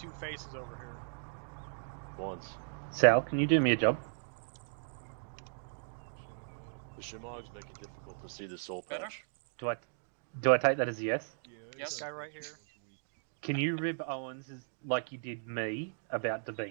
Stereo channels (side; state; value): left; silent; digital silence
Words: faces over here. once? Sal, can you do me a job? The Shimogs make it difficult to see the soul Better? patch. Do I take that as a yes? Yes? Guy right here. Can you rib Owens like you did me about the